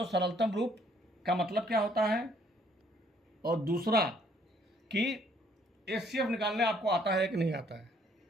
सरलतम रूप का मतलब क्या होता है, और दूसरा कि HCF निकालने आपको आता है कि नहीं आता है,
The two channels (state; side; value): normal; both; correlation 0.64